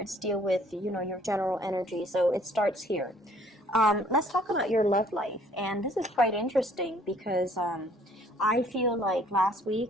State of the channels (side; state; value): both; normal; correlation 0.59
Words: deal with, your general energy. So it starts here. Let's talk about your love life. And this is quite interesting because I feel like last